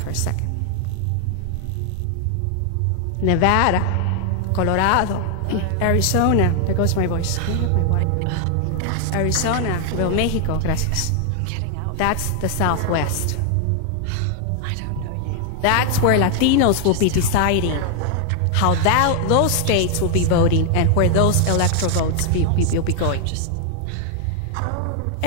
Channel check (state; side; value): different; both; correlation 0.00